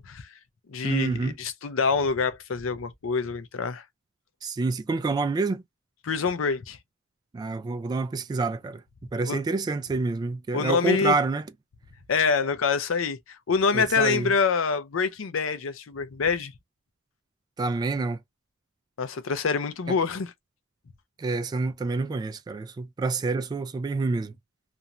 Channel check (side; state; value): both; normal; correlation 0.18